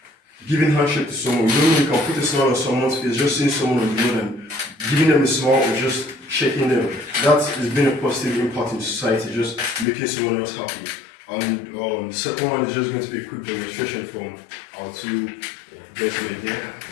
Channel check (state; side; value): drops out; right; at 9.9 s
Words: giving handshake to someone. You don't really can put a smile on someone's face, just seeing someone on the road and giving them a smile or just shaking them. That has been a positive impact in society, just making someone else happy. And the second one is just going to be a quick demonstration from our 2 gentlemen here.